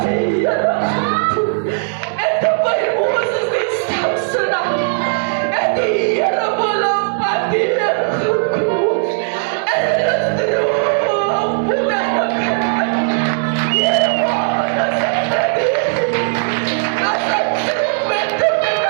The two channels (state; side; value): silent; left; digital silence